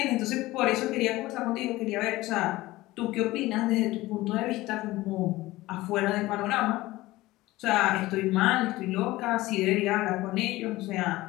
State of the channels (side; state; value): right; quieter; 18.4 dB